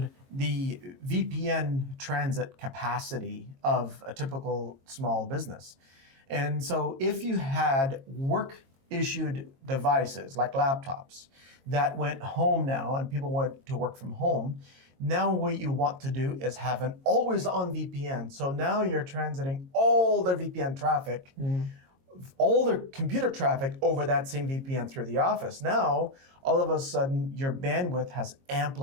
the VPN transit capacity of a typical small business. And so if you had work-issued devices like laptops that went home now and people went to work from home, now what you want to do is have an always-on VPN. So now you're transiting all their VPN traffic, all their computer traffic over that same VPN through the office. Now, all of a sudden, your bandwidth has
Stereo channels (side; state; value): left; late; 22 ms